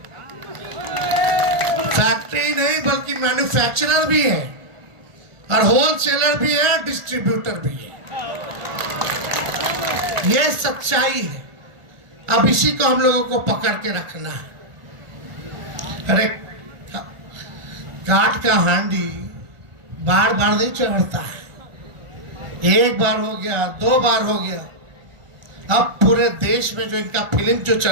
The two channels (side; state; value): left; late; 1.4 ms